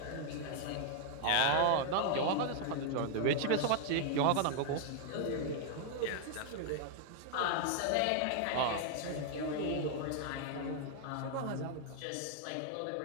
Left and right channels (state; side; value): different; both; correlation 0.00